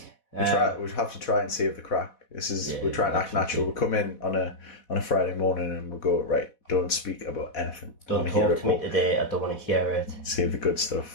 We'll have to try and save the crack. We're trying to act natural. We'll come in on a Friday morning and we'll go, right, don't speak about anything. Don't talk to me today, I don't want to hear it. Save the good stuff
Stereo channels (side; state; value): right; late; 4.1 ms